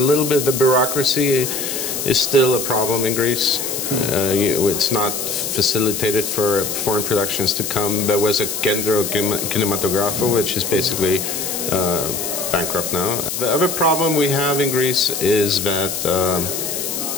bit, the bureaucracy is still a problem in Greece. It's not facilitated for foreign productions to come. There was a Kendro Kinematografo, which is basically bankrupt now. The other problem we have in Greece is that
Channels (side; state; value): left; noise; hiss, 3 dB below the sound